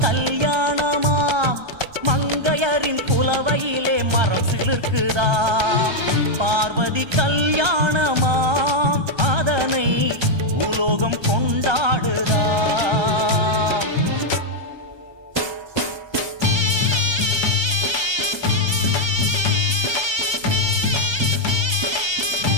கல்யாணமாம். மங்கையரின் புலவையிலே மரம் சிலிர்க்குதாம். பார்வதி கல்யாணமாம் அதனை பூலோகம் கொண்டாடுதாம்.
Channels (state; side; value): late; left; 1.3 ms